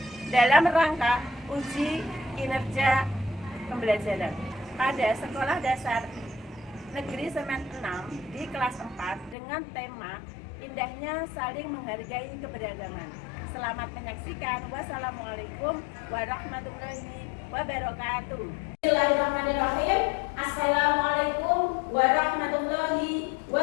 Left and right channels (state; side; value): drops out; right; at 9.3 s